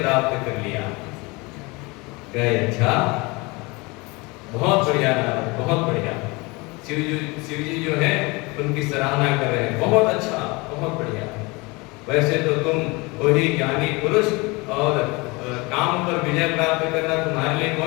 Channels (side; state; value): right; quieter; 25.7 dB